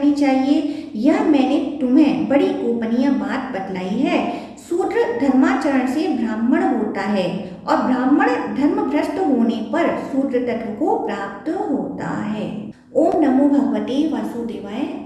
चाहिए। यह मैंने तुम्हें बड़ी गोपनीय बात बतलाई है। शूद्र धर्माचरण से ब्राह्मण होता है और ब्राह्मण धर्म भ्रष्ट होने पर शूद्र तत्व को प्राप्त होता है। ओम नमो भगवते वासुदेवाय।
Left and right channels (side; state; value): both; identical; correlation 1.00